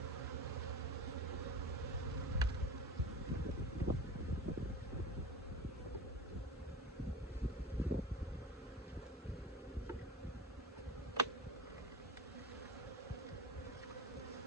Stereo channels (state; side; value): normal; both; correlation 0.32